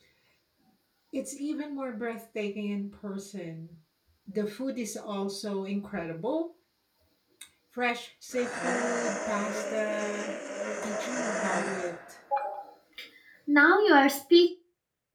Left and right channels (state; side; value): identical; both; correlation 1.00